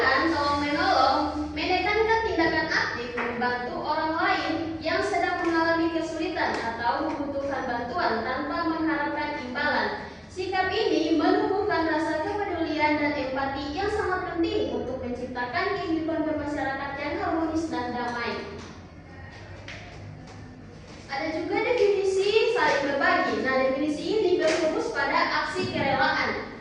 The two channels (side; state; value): both; identical; correlation 1.00